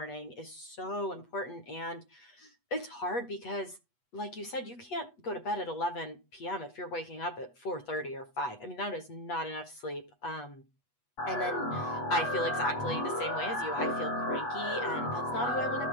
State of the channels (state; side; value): late; right; 8.2 ms